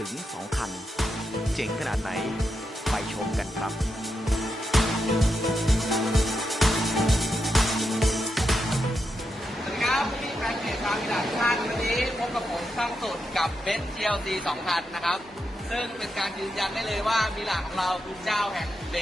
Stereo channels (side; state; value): both; normal; correlation 0.85